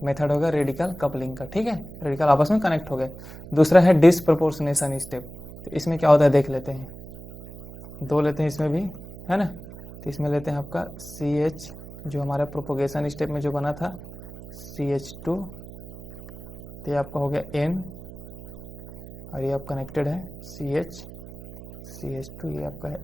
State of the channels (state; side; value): noise; right; hum, 15 dB below the sound